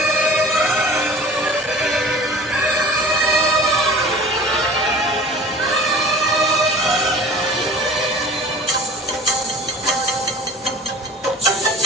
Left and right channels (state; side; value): normal; both; correlation 0.42